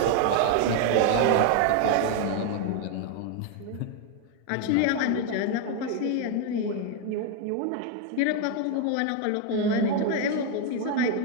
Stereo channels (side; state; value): both; different; correlation 0.01